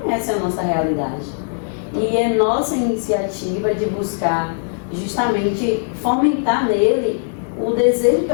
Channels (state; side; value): silent; right; digital silence